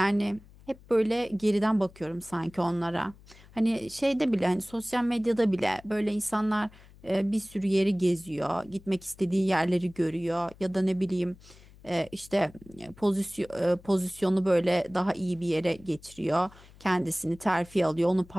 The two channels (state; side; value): noise; left; hum, 23 dB below the sound